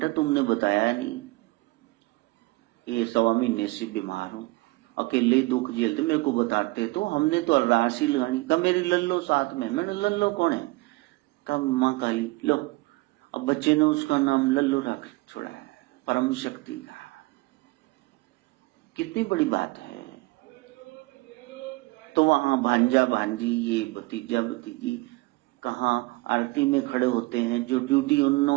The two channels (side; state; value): left; quieter; 23.1 dB